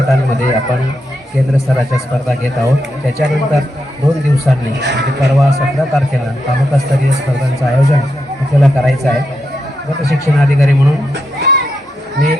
आपण केंद्र स्तराच्या स्पर्धा घेत आहोत। त्याच्यानंतर 2 दिवसांनी म्हणजे परवा 17 तारखेला तालुकास्तरीय स्पर्धांचं आयोजन आपल्याला करायचं आहे। गट शिक्षण अधिकारी म्हणून मी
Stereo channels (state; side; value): normal; both; correlation 0.84